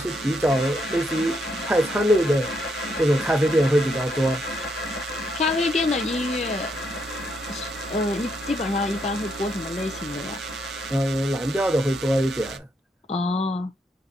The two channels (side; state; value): both; normal; correlation 0.76